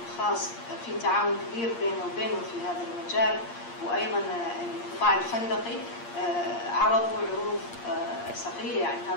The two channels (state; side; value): late; right; 8.6 ms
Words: الخاص في تعاون كبير بينه وبينه في هذا المجال، وأيضا القطاع الفندقي عرضوا عروض سخية يعني